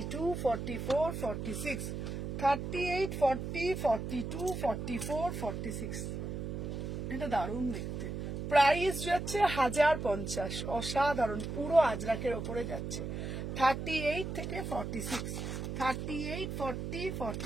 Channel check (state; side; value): noise; right; hum, 4 dB below the sound